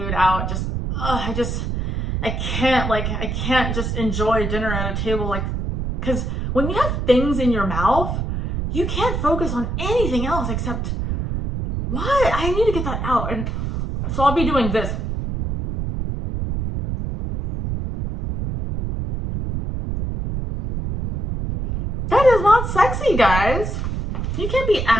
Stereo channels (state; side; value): noise; right; rumble, 2 dB below the sound